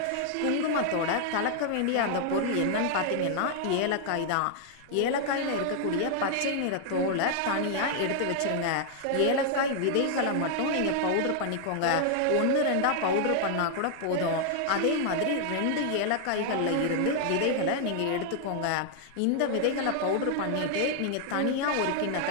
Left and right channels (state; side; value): different; both; correlation 0.00